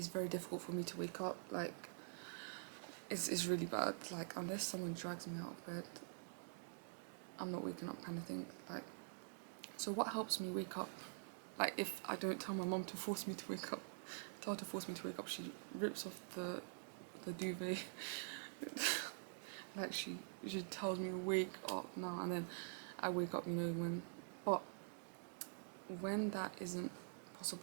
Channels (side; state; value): left; silent; digital silence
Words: very difficult for me to wake up. Like, it's really bad. Like, unless someone drags me out of bed, I'm not waking up, kind of thing. Like, so what helps me wake up? Like, if I don't tell my mom to force me to wake up, tell her to force me to wake up, she rips off the duvet. Like, she tells me wake up now, and then I wake up, when. But when that isn't